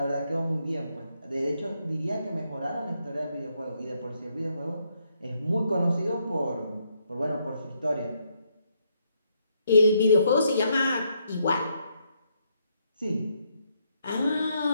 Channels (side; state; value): both; inverted; correlation -0.75